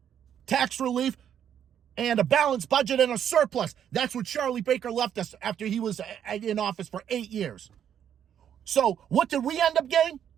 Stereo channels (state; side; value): quieter; left; 9.3 dB